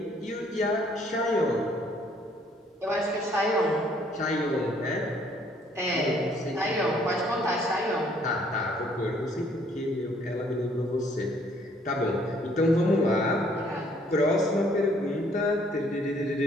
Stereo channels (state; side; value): normal; both; correlation 0.63